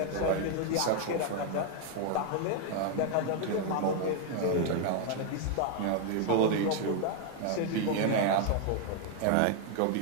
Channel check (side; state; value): both; different; correlation 0.00